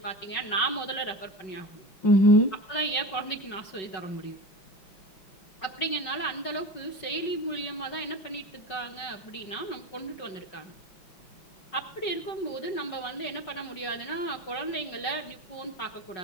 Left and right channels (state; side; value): late; right; 5.3 ms